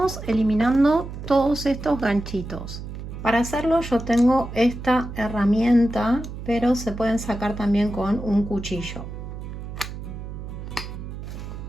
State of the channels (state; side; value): noise; right; hum, 9 dB below the sound